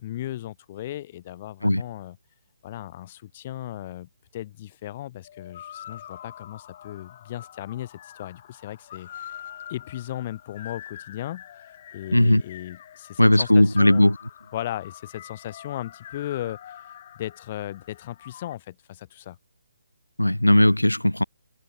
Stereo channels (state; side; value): inverted; both; correlation -0.96